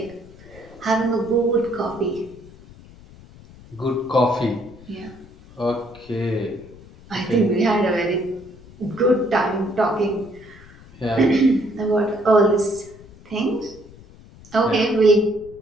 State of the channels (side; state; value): left; noise; rumble, 21 dB below the sound